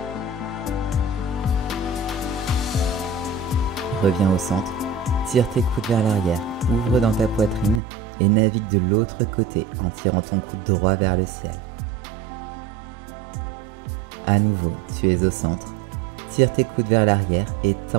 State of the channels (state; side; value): drops out; left; at 7.8 s